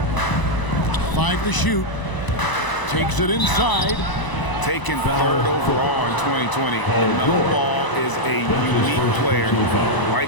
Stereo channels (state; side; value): late; right; 1.0 ms